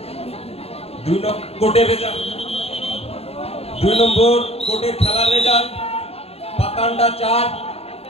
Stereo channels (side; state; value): right; late; 0.29 ms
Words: দুই নম্বর কোটের খেলার রেজাল্ট পাতান্ডা 4।